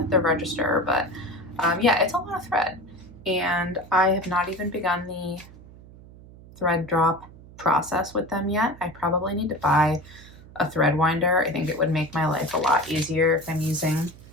the register, but yeah, it's a lot of thread, and I have not even begun the thread drop process with them yet. I probably need to buy a thread winder. I think it would make my life a lot easier if I'm using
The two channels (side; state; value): right; noise; hum, 20 dB below the sound